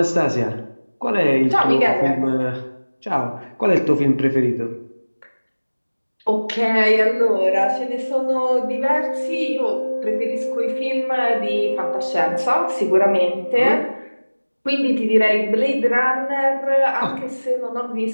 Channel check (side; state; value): both; inverted; correlation -1.00